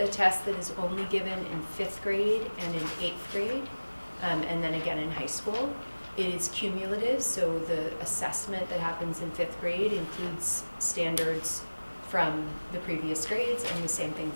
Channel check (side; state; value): both; inverted; correlation -1.00